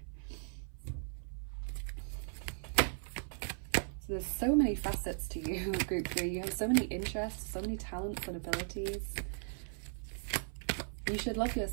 So there's so many facets to you, group 3. You have so many interests, so many talents and abilities. You should love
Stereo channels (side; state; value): left; silent; 53 dB below the other